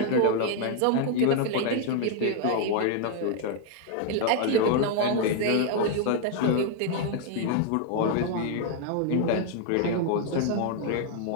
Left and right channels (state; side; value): different; both; correlation 0.00